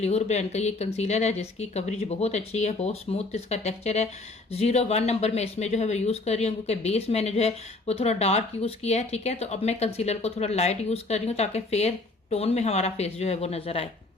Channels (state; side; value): quieter; right; 3.2 dB